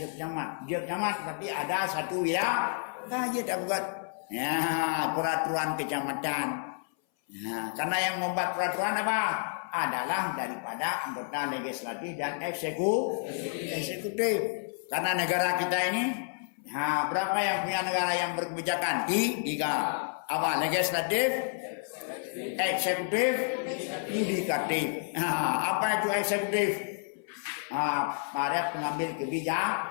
tapi ada satu ya aja tak buat ya peraturan kecamatan. Nah, karena yang membuat peraturan apa? Adalah daripada anggota legislatif dan eksekutif. Karena negara kita ini, berapa yang punya negara yang berkebijakan? Tiga. Apa? Legislatif, eksekutif, yudikatif. Apa itu eksekutif? Para pengambil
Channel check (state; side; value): silent; right; 57 dB below the other